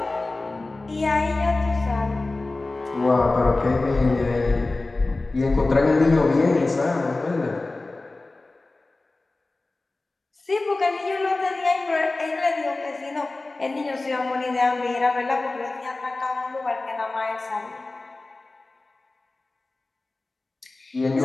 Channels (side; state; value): right; quieter; 3.2 dB